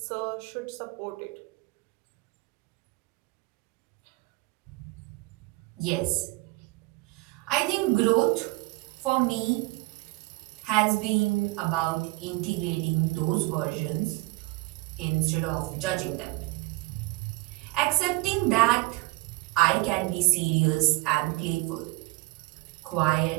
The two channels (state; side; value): quieter; left; 22.4 dB